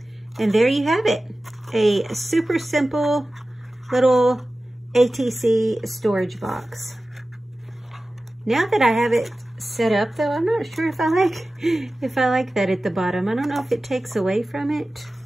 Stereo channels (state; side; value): normal; both; correlation 0.96